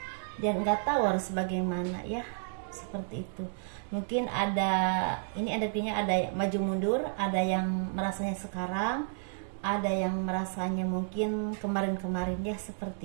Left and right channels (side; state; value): left; silent; digital silence